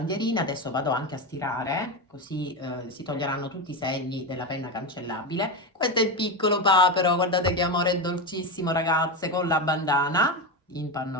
adesso vado anche a stirare, così si toglieranno tutti i segni della penna cancellabile. Questo è il piccolo papero, guardate che amore dolcissimo, ragazze, con la bandana in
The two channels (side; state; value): both; normal; correlation 0.16